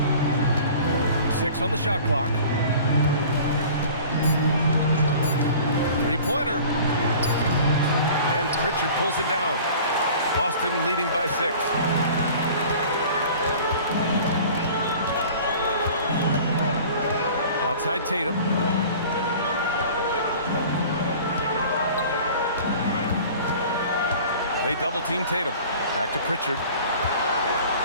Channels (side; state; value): both; inverted; correlation -0.44